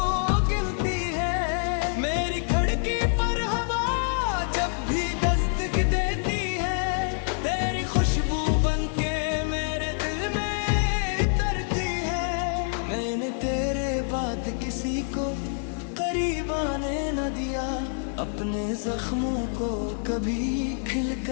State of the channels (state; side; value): silent; right; 57 dB below the other